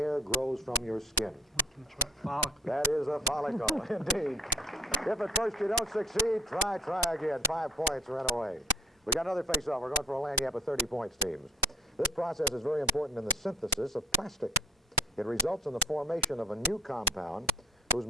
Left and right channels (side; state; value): both; normal; correlation 0.53